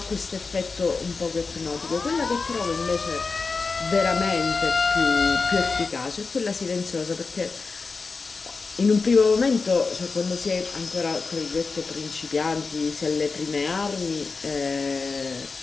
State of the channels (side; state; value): right; quieter; 4.4 dB